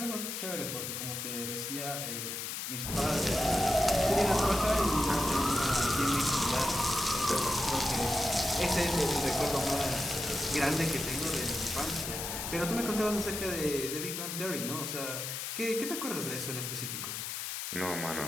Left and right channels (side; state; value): left; noise; hiss, 5 dB below the sound